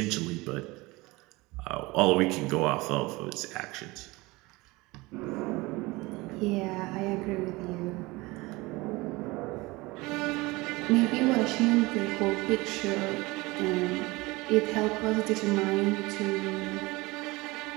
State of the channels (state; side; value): quieter; left; 22.5 dB